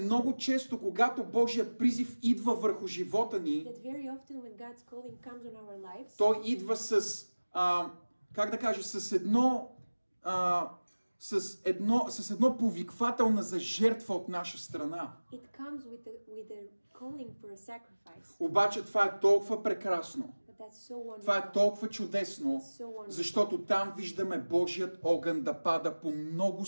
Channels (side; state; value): both; inverted; correlation -1.00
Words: често, когато Божия призив идва върху живота ни, той идва с, как да кажа, с едно повиквателна за жертва от наша страна. Обаче това е толкова прекрасно. Това е толкова чудесно, защото там виждаме Божият огън да пада по много